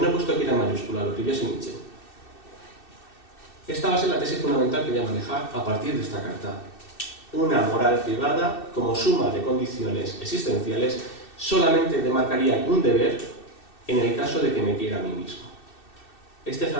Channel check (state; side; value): late; right; 2.6 ms